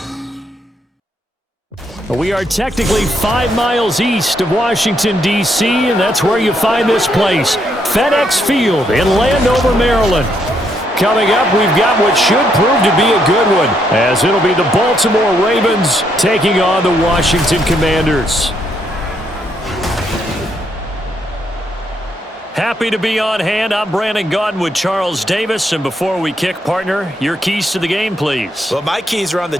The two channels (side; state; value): both; normal; correlation 0.75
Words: We are technically 5 miles east of Washington, D.C., and that's where you find this place, FedEx Field in Landover, Maryland. Coming up, we've got what should prove to be a good one, as it'll be the Baltimore Ravens taking on the Washington Commanders. Happy to be on hand. I'm Brandon Gaudin with Charles Davis. And before we kick, partner, your keys to the game, please. Well, my keys are on the